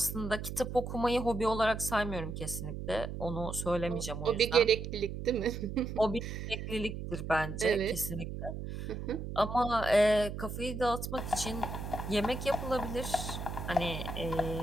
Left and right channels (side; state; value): right; noise; hum, 6 dB below the sound